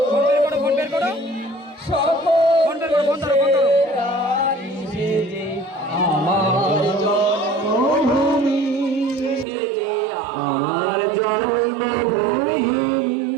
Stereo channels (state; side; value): drops out; left; at 9.5 s